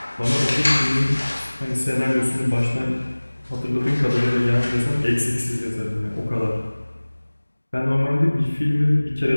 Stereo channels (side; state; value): both; inverted; correlation -1.00